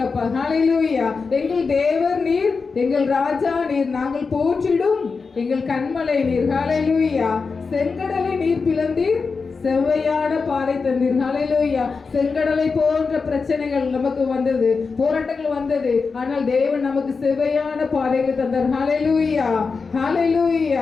ஹalleluya எங்கள் தேவர் நீர் எங்கள் ராஜா நீர் நாங்கள் போற்றிடும் எங்கள் கண்மலை நீர் ஹalleluya செங்கடலை நீர் பிளந்தீர் செவ்வையான பாதை தந்தீர் ஹalleluya செங்கடலை போன்ற பிரச்சனைகள் நமக்கு வந்தது போராட்டங்கள் வந்தது ஆனால் தேவன் நமக்கு செவ்வையான பாதைகள் தந்தார் ஹalleluya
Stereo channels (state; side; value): quieter; right; 4.7 dB